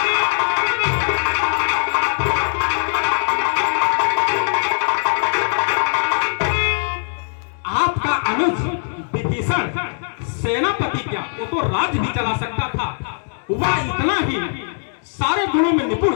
विभीषण सेनापति क्या, वो तो राज्य भी चला सकता था। वह इतना ही सारे गुणों में निपुण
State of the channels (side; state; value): right; silent; 66 dB below the other